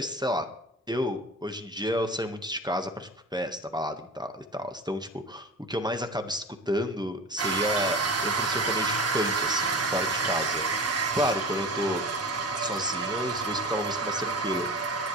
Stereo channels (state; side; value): normal; both; correlation 0.33